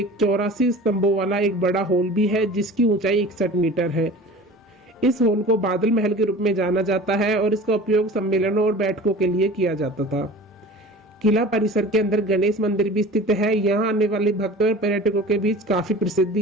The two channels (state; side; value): normal; both; correlation 0.40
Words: 84 स्तंभों वाला एक बड़ा हॉल भी है जिसकी ऊंचाई 61 मीटर है। इस हॉल को बादल महल के रूप में जाना जाता है और इसका उपयोग सम्मेलनों और बैठकों के लिए किया जाता था। किला परिसर के अंदर गणेश मंदिर भी स्थित है। यहाँ आने वाले भक्तों और पर्यटकों के बीच काफी